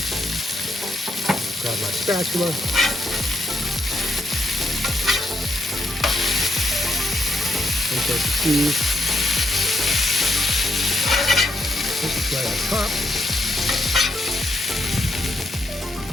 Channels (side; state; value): both; normal; correlation 0.78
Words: Grab my spatula. Insert the cheese. This is right on top.